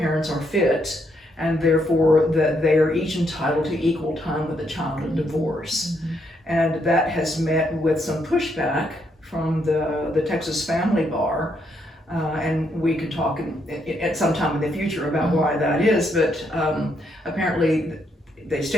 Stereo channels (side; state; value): both; normal; correlation 0.75